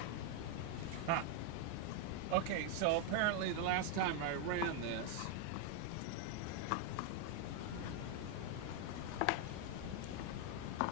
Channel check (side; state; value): both; different; correlation 0.01